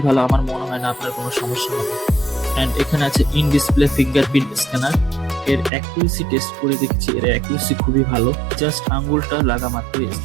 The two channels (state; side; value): drops out; left; at 5.7 s